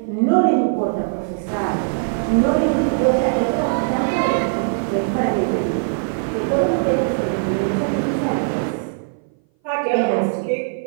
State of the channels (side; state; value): left; silent; 59 dB below the other